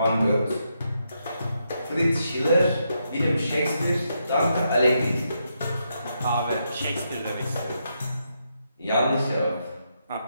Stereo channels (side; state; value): both; inverted; correlation -0.81